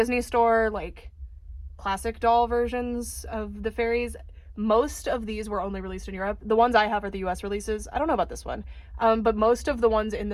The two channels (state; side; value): identical; both; correlation 1.00